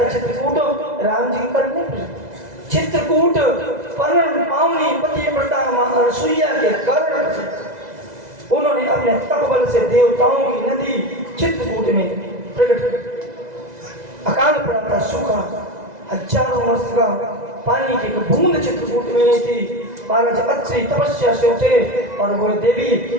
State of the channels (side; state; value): left; late; 2.0 ms